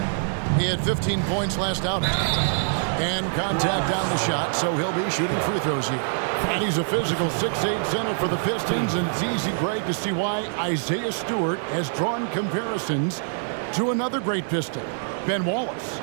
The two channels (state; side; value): silent; left; digital silence